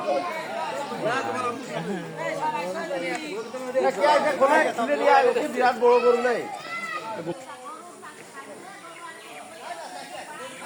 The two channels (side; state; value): both; identical; correlation 1.00